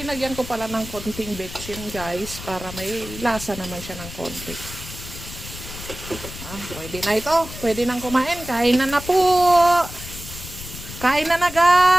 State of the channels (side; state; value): left; noise; rumble, 12 dB below the sound